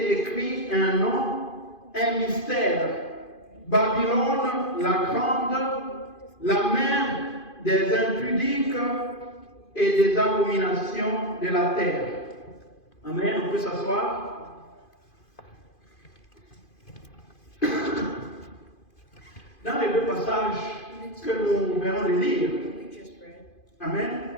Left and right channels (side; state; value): right; late; 2.5 ms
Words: écrit un nom, un mystère: Babylone la grande, la mère des impudiques et des abominations de la terre. Amen. On peut s'asseoir. Dans les 2 passages que nous venons de lire, Amen,